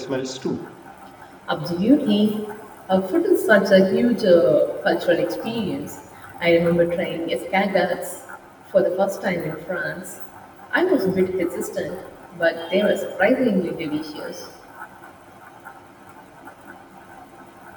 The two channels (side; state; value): both; identical; correlation 1.00